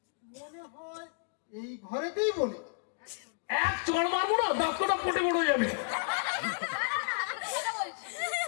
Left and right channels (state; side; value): quieter; right; 37.8 dB